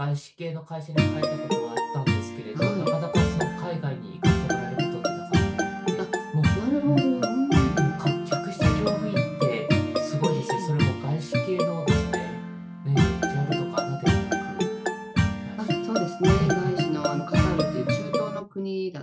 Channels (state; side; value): identical; both; correlation 1.00